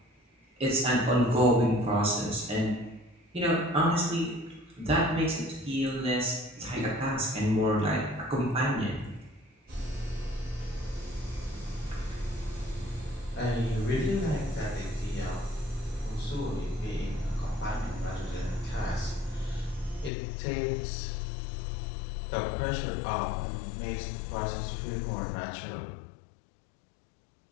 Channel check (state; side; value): drops out; right; at 20.1 s